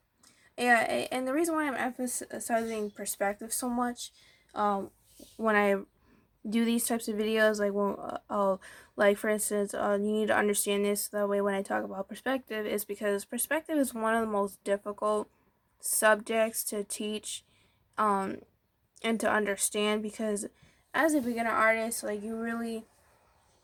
yeah, and the reason why I'm emphasizing perspective so much, when I do these types of videos, like when like for instance, you need to understand this that way when I talk about perspective, is because perspective is one of the most difficult subjects to teach, um, and to understand, because as a beginner artist, like you really,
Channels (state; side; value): identical; both; correlation 1.00